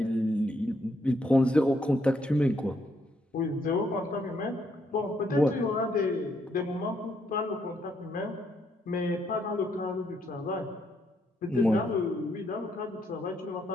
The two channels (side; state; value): both; normal; correlation 0.75